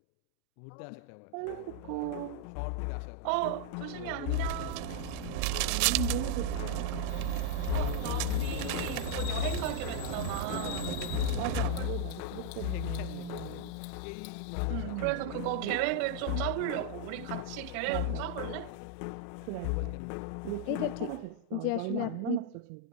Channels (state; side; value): different; both; correlation 0.00